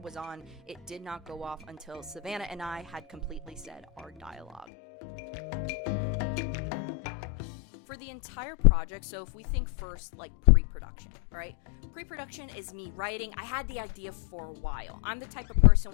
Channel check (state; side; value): drops out; right; at 4.7 s